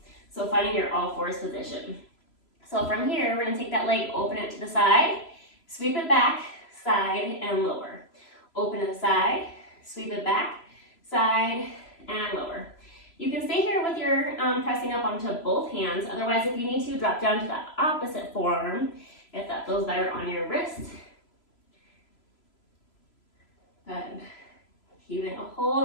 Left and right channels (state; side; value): late; right; 3.0 ms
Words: So finding your all fours position. So from here, we're gonna take that leg, open it to the side, sweep it back, side, and lower. Open to the side, sweep it back, side, and lower. You can stay here with your pressing up onto both hands. Otherwise, if you need to, drop down to the opposite forearm if that feels better on your wrist. Good. Keeping a